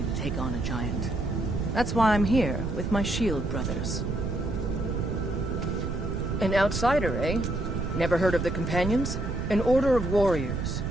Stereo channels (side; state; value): right; noise; rumble, 3 dB below the sound